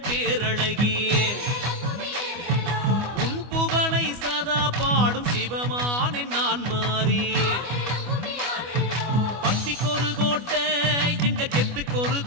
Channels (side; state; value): left; late; 25 ms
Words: பேரழகி உன் புகழை சதா பாடும் சிவமானே நான் மாறி பக்திக்கொரு கோட்டை எங்க கெத்துக்கொரு